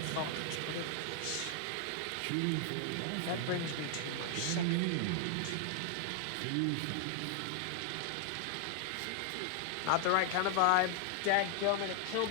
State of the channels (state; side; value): different; both; correlation 0.00